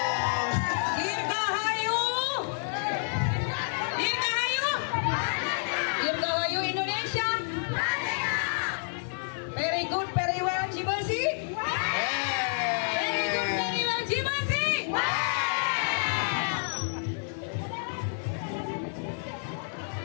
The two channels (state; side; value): silent; right; 58 dB below the other